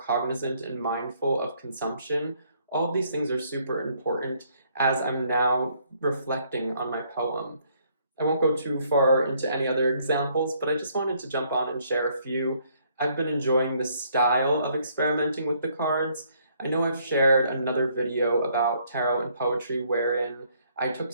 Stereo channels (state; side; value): inverted; both; correlation -0.67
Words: and mindful of consumption. All of these things are super important as I'm now reflecting on my poem. I won't go too far into any other examples, but I just wanted to jump on and share a few. I've been enjoying this style of experimenting with the cards. I know I've shared another video about tarot and poetry wherein I took